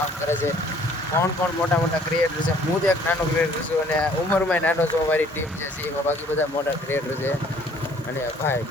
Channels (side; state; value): both; normal; correlation 0.58